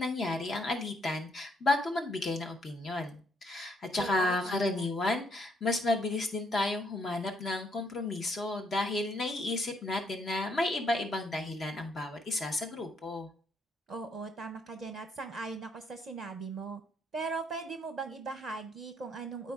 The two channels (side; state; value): both; normal; correlation 0.71